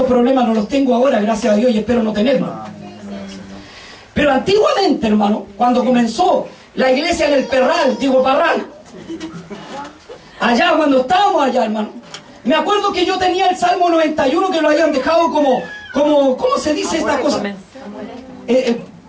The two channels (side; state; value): both; identical; correlation 1.00